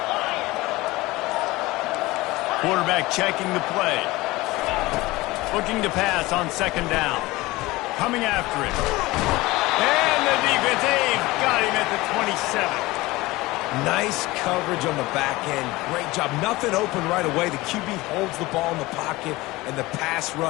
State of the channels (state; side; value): quieter; right; 20.2 dB